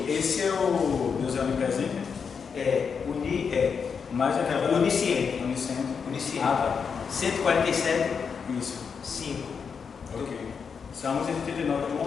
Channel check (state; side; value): quieter; right; 6.1 dB